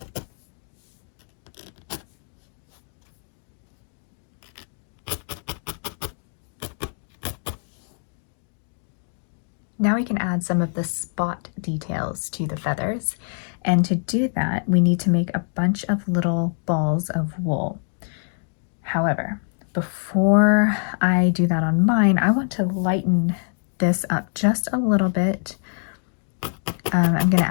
Now we can add some of the spot details to the feathers. And to do that, we need to make a bunch of little balls of wool. However, before I do that on mine, I want to lighten this up just a little bit. I'm going to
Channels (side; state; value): right; silent; 59 dB below the other